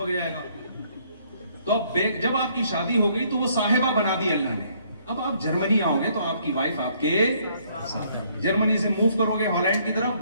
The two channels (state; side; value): inverted; both; correlation -0.66